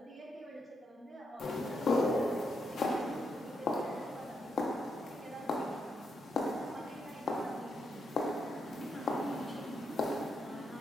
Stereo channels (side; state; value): both; normal; correlation 0.81